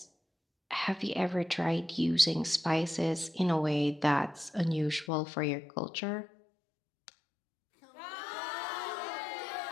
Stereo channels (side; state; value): right; drops out; at 5.1 s